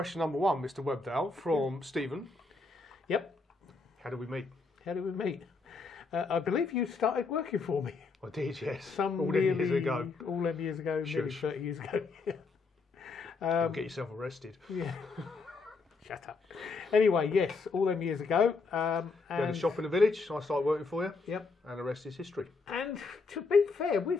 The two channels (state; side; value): quieter; right; 4.2 dB